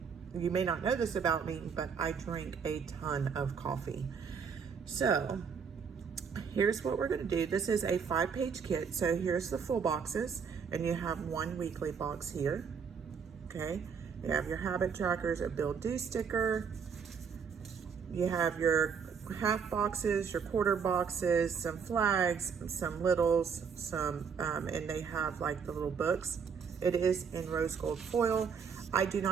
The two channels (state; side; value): quieter; left; 6.4 dB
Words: you may not know this about me, but I drink a ton of coffee. So here's what we're going to do. This is a 5-page kit. So here's the full boxes, and you have one weekly box here. Okay. You have your habit trackers, a build do sticker. You have your half boxes, your quarter boxes, some flags, some littles, and they have like the little books. It is in rose gold foil. I do